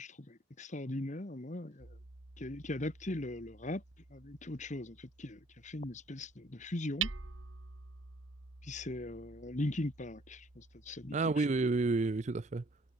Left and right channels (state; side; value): normal; both; correlation 0.60